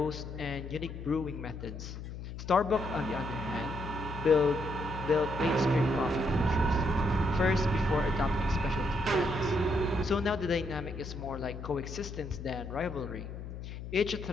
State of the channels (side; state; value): left; noise; hum, 9 dB below the sound